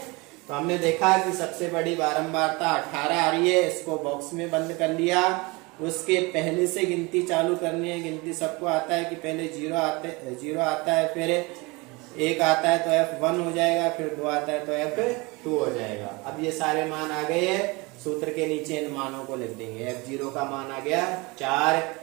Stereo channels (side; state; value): left; quieter; 25.6 dB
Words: तो हमने देखा कि सबसे बड़ी बारंबारता 18 आ रही है। इसको बॉक्स में बंद कर लिया। उसके पहले से गिनती चालू करनी है। गिनती सबको आता है कि पहले 0 आता है, फिर 1 आता है तो F1 हो जाएगा, फिर 2 आता है तो F2 हो जाएगा। अब ये सारे मान आ गए हैं। सूत्र के नीचे इन मानों को लिख देंगे। F0 का मान आ गया 4,